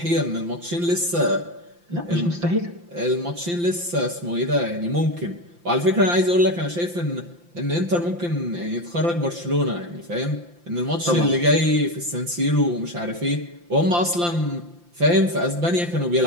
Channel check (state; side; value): late; left; 5.8 ms